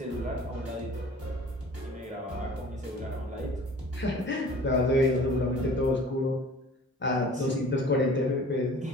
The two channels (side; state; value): both; normal; correlation 0.46